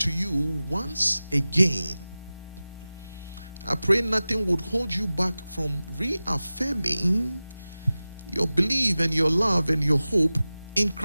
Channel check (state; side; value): inverted; both; correlation -0.97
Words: you once again. I pray nothing would hold you back from reaffirming your belief and your love and your hope in